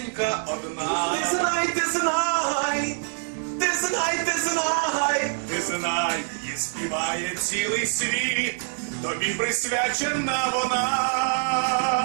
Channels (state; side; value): silent; left; 59 dB below the other